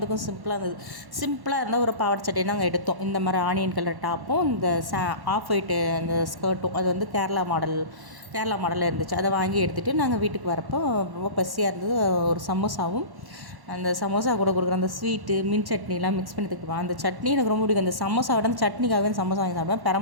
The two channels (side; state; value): left; late; 1.1 ms